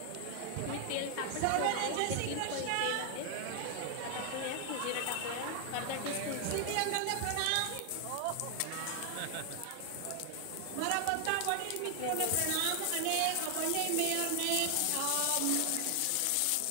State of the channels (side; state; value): both; different; correlation 0.00